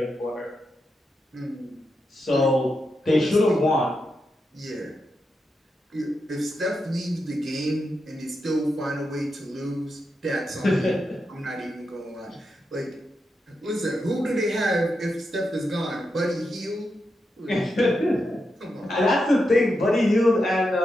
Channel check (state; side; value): normal; both; correlation 0.86